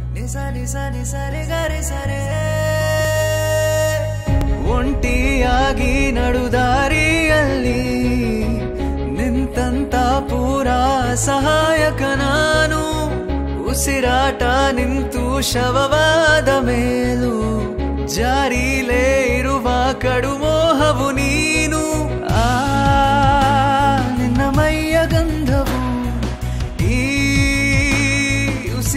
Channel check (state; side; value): identical; both; correlation 1.00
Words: nisa nisa nisa re ga re sa re ಒಂಟಿಯಾಗಿ ನಡುದಾರಿಯಲ್ಲಿ ನಿಂತಂತ ಪೂರಾ ಸಹಾಯಕ ನಾನು ಉಸಿರಾಟ ನಿಂತು ಶವವಾದ ಮೇಲೂ ಜಾರಿಲೇ ಇರುವ ಕಡುಮೋಹವು ನೀನು ನಿನ್ನ ಮೈಯ ಗಂಧವು ಈ